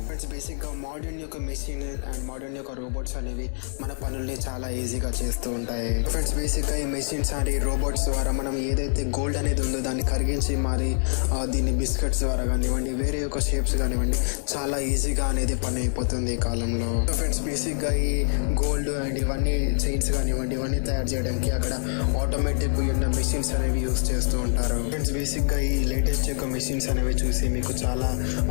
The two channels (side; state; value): right; silent; digital silence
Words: ఫ్రెండ్స్, బేసిక్గా మోడర్న్ యొక్క మెషిన్ అండ్ మోడర్న్ యొక్క రోబోట్స్ అనేవి మన పనుల్ని చాలా ఈజీగా చేస్తూ ఉంటాయి. ఫ్రెండ్స్, బేసిక్గా ఈ మెషిన్స్ అండ్ ఈ రోబోట్స్ ద్వారా మనం ఏదైతే గోల్డ్ అనేది ఉందో దాన్ని కరిగించి మరి దీన్ని బిస్కెట్స్ ద్వారా కానివ్వండి, వేరే యొక్క షేప్స్ కానివ్వండి, చాలా ఈజీగా అనేది పని అయిపోతుంది ఈ కాలంలో. సో ఫ్రెండ్స్, బేసిక్గా ఈ గోల్డ్ అండ్ ఇవన్నీ చైన్స్ కానివ్వండి, ఇవన్నీ తయారు చేయడానికి అక్కడ ఆటోమేటిక్ ఉన్న మెషిన్స్ అనేవి యూస్ చేస్తూ ఉంటారు. ఫ్రెండ్స్, బేసిక్గా ఈ లేటెస్ట్ యొక్క మెషిన్స్ అనేవి చూసి మీకు చాలా